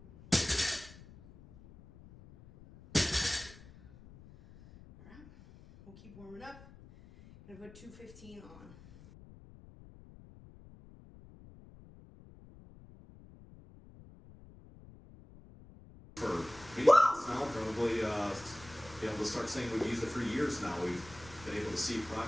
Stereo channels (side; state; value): left; noise; rumble, 20 dB below the sound